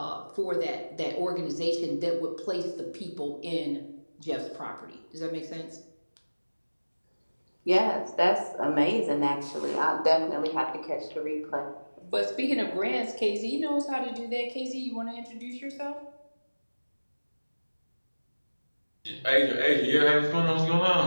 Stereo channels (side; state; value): both; inverted; correlation -1.00